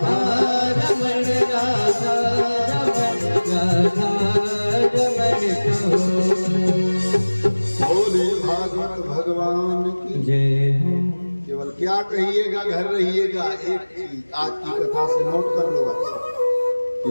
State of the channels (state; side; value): inverted; both; correlation -1.00